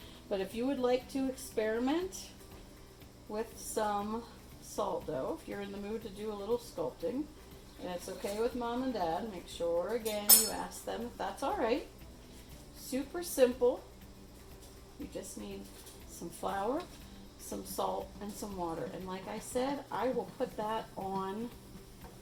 But if you would like to experiment with some salt dough, if you're in the mood to do a little sculpting, and it's okay with Mom and Dad, make sure again you ask them if that's alright. Super simple. You just need some flour, some salt, and some water. And like I said, I will put that on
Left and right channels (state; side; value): identical; both; correlation 1.00